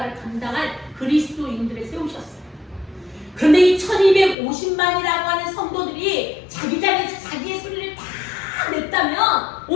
감당할 그리스도인들을 세우셨어요. 그런데 이 1250만이라고 하는 성도들이 자기 자리에서 자기의 소리를 다 냈다면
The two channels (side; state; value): right; drops out; at 4.4 s